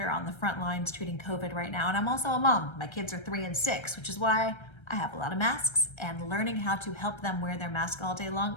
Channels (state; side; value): late; right; 1.3 ms